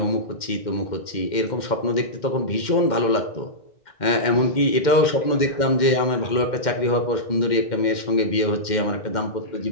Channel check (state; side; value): late; right; 2.1 ms